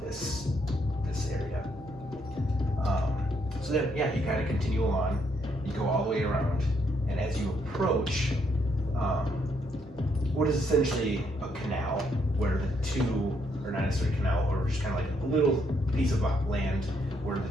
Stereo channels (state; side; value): normal; both; correlation 0.73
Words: this area. So then, yeah, you kind of continue along. You go all the way around, and as you approach, what is essentially a canal, where the two, or not necessarily a canal, or just kind of like a little piece of land where